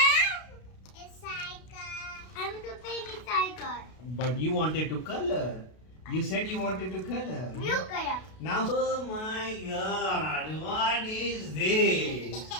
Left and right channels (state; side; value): late; right; 32 ms